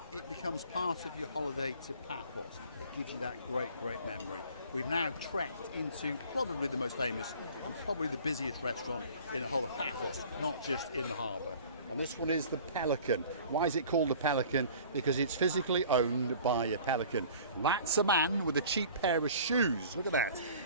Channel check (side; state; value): both; inverted; correlation -0.47